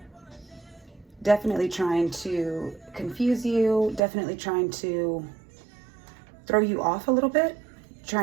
Definitely trying to confuse you, definitely trying to throw you off a little bit,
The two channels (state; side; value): drops out; left; at 4.0 s